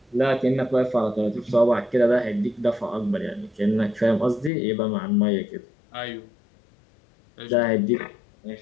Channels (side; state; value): right; drops out; at 4.5 s